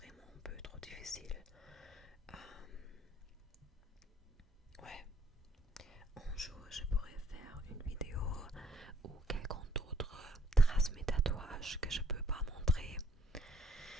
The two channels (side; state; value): both; normal; correlation 0.66